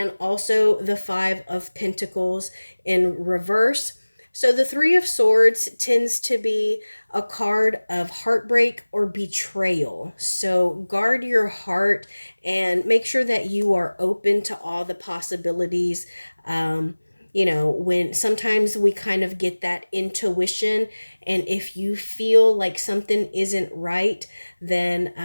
also the Five of Pentacles in reverse. So the Three of Swords tends to be a card of heartbreak or betrayal. So guard your heart and make sure that you are open to all the possibilities. When sometimes we kind of get that intuition, and if you feel like something isn't right, then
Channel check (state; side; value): inverted; both; correlation -1.00